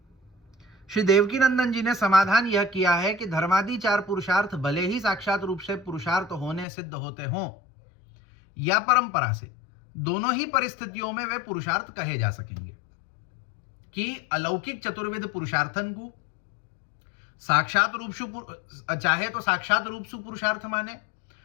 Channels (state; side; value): drops out; right; at 6.7 s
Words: श्री देवकी नंदन जी ने समाधान यह किया है कि धर्मादि चार पुरुषार्थ भले ही साक्षात रूप से पुरुषार्थ होने सिद्ध होते हों या परंपरा से, दोनों ही परिस्थितियों में वे पुरुषार्थ कहे जा सकेंगे। कि अलौकिक चतुर्विध पुरुषार्थन को साक्षात रूप सु चाहे तो साक्षात रूप सु पुरुषार्थ माने